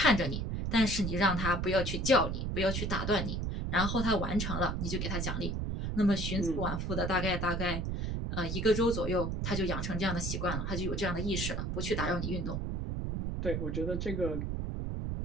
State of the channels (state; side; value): noise; right; rumble, 2 dB below the sound